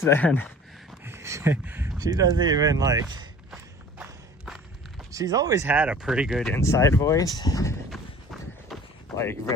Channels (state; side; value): normal; both; correlation 0.46